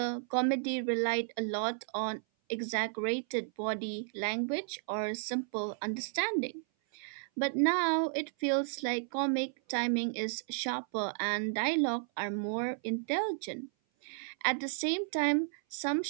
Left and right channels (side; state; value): left; silent; 56 dB below the other